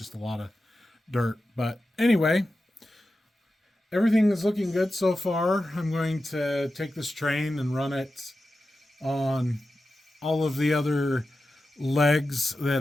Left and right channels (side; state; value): both; normal; correlation 0.92